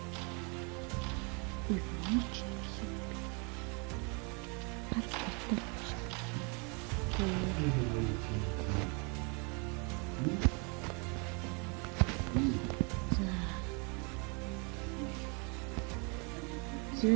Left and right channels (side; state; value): left; quieter; 33.0 dB